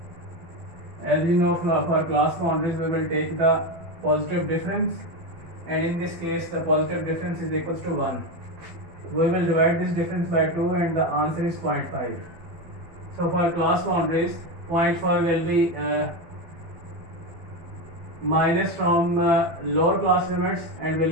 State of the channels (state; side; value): late; left; 12 ms